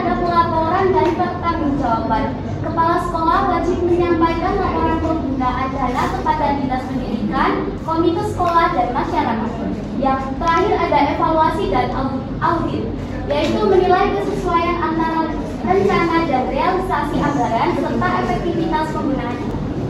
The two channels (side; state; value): both; identical; correlation 1.00